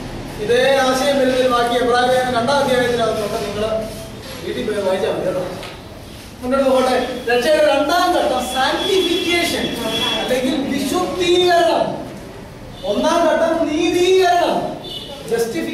ഇതേ ആശയം വരുന്നൊരു ബാക്കി എബ്രായലേഖനം 2-ാം അധ്യായത്തിനകത്തുണ്ട്. നിങ്ങൾ വീട്ടിൽ പോയി വായിച്ചാൽ മതി കേട്ടോ. മുന്നോട്ട് പോകട്ടെ. രക്ഷയുടെ 2-ാം ഘട്ടം സാങ്ക്ടിഫിക്കേഷൻ അല്ലെങ്കിൽ വിശുദ്ധീകരണം. 1-ാം ഘട്ടം നീതീകരണം,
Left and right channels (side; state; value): both; identical; correlation 1.00